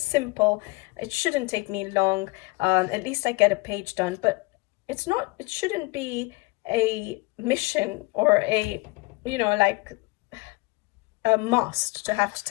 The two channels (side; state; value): right; quieter; 24.5 dB